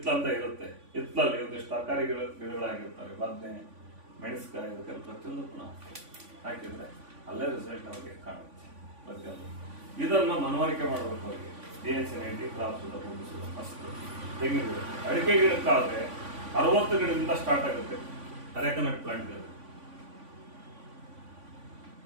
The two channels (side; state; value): left; late; 3.5 ms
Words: ಅಂತ ಇರುತ್ತೆ, ಹಿತ್ಲಲ್ಲಿ ಒಂದಿಷ್ಟು ತರಕಾರಿ ಗಿಡಗಳಾಗಿರ್ತಾರೆ, ಬದನೆ, ಮೆಣಸಿನಕಾಯಿ, ಅದಕ್ಕೆ ಪ್ರತಿಯೊಂದಕ್ಕೂ ಹಾಕಿದ್ರೆ ಅಲ್ಲೇ ರಿಸಲ್ಟ್ ಅವ್ರಿಗೆ ಕಾಣುತ್ತೆ ಪ್ರತಿಯೊಂದು. ಇದನ್ನ ಮನವರಿಕೆ ಮಾಡಬೇಕು ಅವ್ರಿಗೆ. DS-90 ಕ್ರಾಪ್ ಸುಧಾ, ಭೂಮಿ ಸುಧಾ ಫಸ್ಟ್. ತೆಂಗಿನ ಗಿಡ, ಅಡಿಕೆ ಗಿಡಕ್ಕಾದ್ರೆ 60 ಗಿಡದಿಂದ ಸ್ಟಾರ್ಟ್ ಆಗುತ್ತೆ ಅರೆಕನಟ್ ಪ್ಲಾಂಟ್.